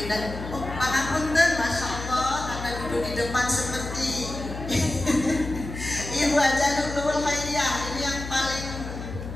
Oh, pangapunten, masya Allah, karena duduk di depan seperti Ibu Haja Nurul Khairiyah. Ini yang paling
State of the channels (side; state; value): left; noise; hum, 8 dB below the sound